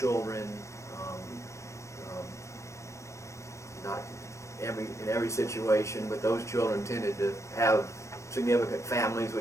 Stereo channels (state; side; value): late; right; 0.14 ms